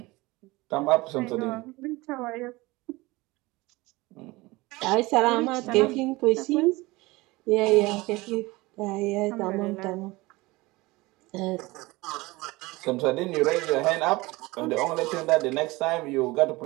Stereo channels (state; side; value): quieter; left; 21.8 dB